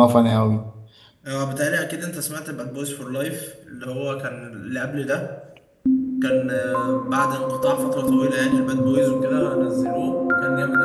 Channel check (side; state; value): both; identical; correlation 1.00